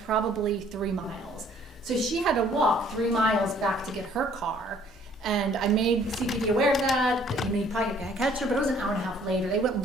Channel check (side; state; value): both; normal; correlation 0.59